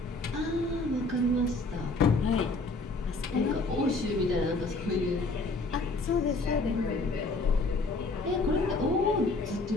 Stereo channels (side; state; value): right; quieter; 3.3 dB